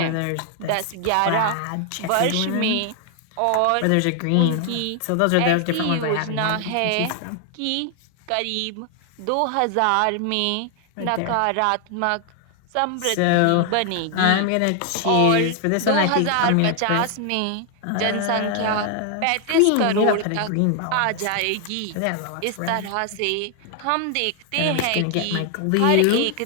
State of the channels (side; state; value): both; different; correlation 0.00